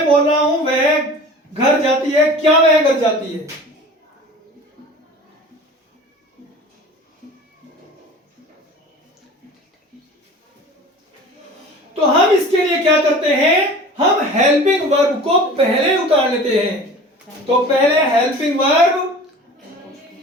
बोल रहा हूं, वह घर जाती है, क्या वह घर जाती है। तो हम इसके लिए क्या करते हैं, हम हेल्पिंग वर्ब को पहले उतार लेते हैं। तो पहले हेल्पिंग वर्ब,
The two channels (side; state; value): both; normal; correlation 0.41